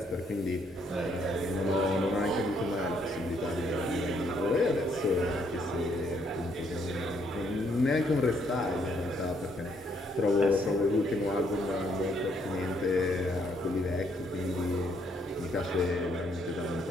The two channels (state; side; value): normal; both; correlation 0.71